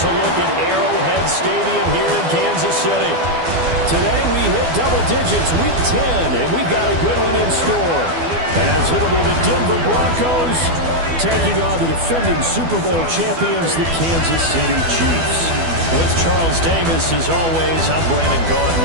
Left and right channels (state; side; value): late; left; 12 ms